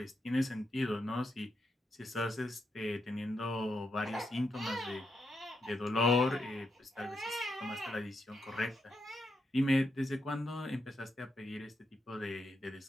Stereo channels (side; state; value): both; normal; correlation 0.83